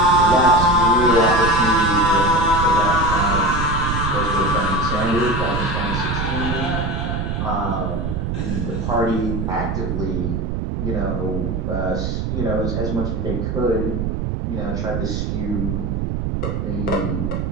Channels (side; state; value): right; noise; rumble, 1 dB below the sound